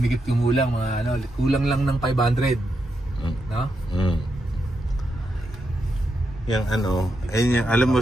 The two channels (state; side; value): normal; both; correlation 0.84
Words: kumulang mga ano, kulang lang ng 500. No? Yung ano, ayun yung, alam mo